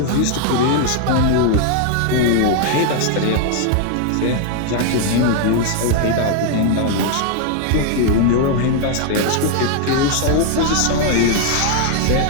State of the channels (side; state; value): both; different; correlation 0.00